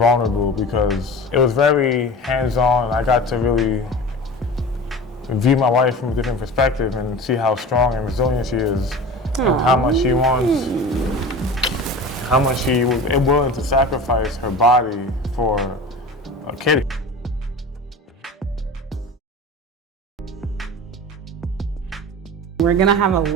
because it was very hands-on. I got to really view my wife from a different perspective and see how strong and resilient she is, and how much she wants, how much she was willing to sacrifice her body for a kid. We're gonna have a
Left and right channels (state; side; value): normal; both; correlation 0.34